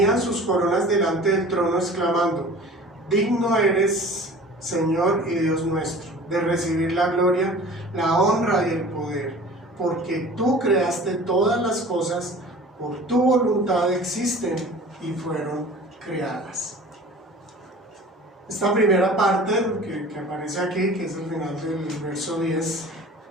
sus coronas delante del trono exclamando: digno eres, Señor y Dios nuestro, de recibir la gloria, la honra y el poder, porque tú creaste todas las cosas, por tu voluntad existen y fueron creadas. Esta primera parte que aparece aquí, que es el final del verso 10,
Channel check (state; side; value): normal; both; correlation 0.43